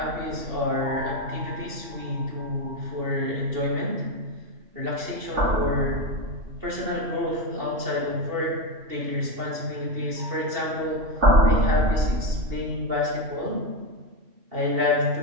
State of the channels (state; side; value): late; left; 2.8 ms